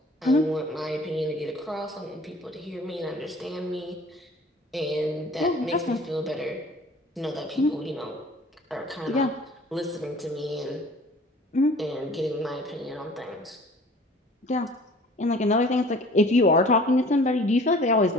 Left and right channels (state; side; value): normal; both; correlation 0.49